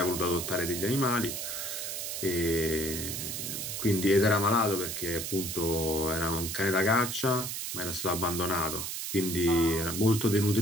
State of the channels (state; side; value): noise; right; hiss, 4 dB below the sound